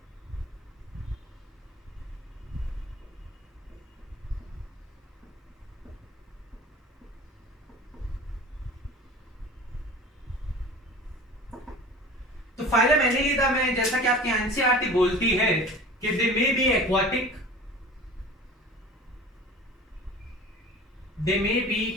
तो फाइलम एनिलिडा में जैसा कि आपकी एनसीईआरटी बोलती है कि they may be aquatic, they may be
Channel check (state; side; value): normal; both; correlation 0.41